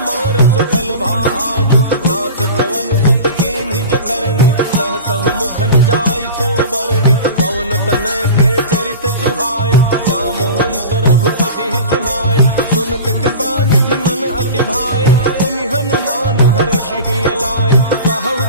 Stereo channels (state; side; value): inverted; both; correlation -0.33